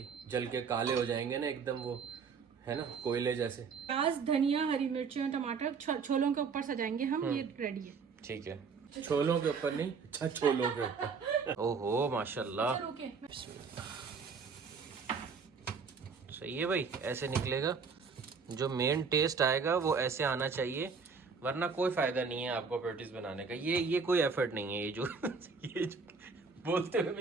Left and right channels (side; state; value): left; quieter; 5.4 dB